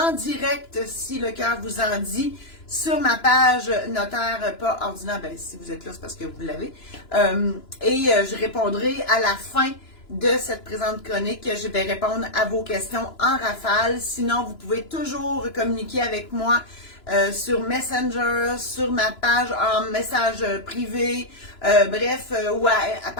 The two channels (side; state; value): right; late; 2.9 ms